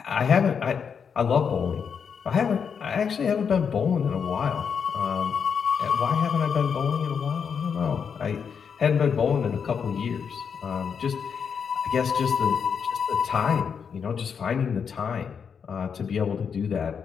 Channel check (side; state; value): right; quieter; 6.7 dB